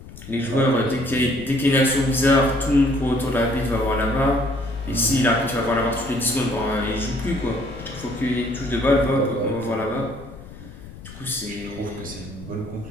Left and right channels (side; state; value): left; noise; rumble, 16 dB below the sound